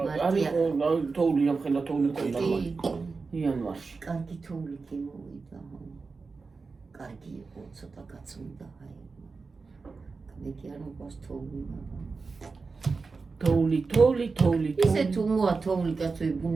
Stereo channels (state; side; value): quieter; left; 4.4 dB